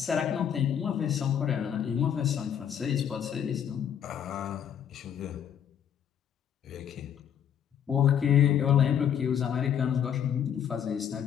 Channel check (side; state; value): right; quieter; 8.9 dB